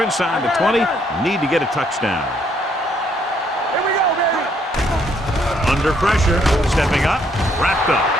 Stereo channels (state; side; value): normal; both; correlation 0.69